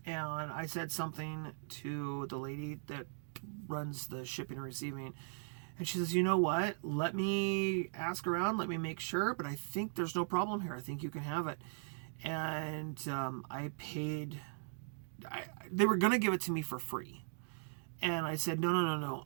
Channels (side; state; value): left; silent; digital silence